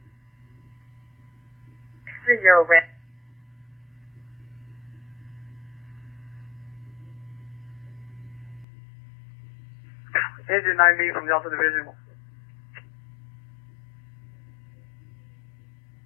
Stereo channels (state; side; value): drops out; right; at 8.7 s